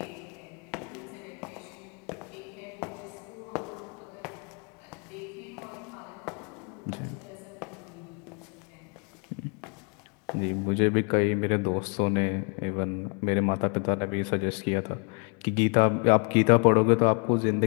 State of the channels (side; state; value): right; quieter; 36.3 dB